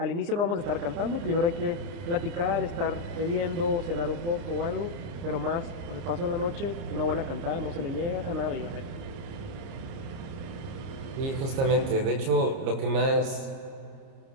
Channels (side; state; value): left; late; 30 ms